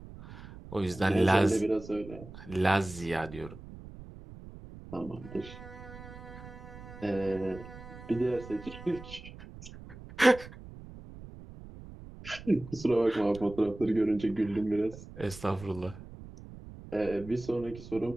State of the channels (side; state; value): right; noise; rumble, 15 dB below the sound